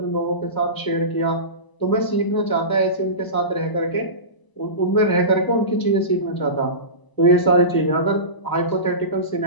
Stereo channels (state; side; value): late; right; 1.0 ms